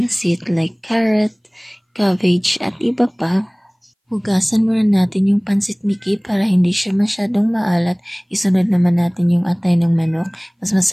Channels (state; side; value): identical; both; correlation 1.00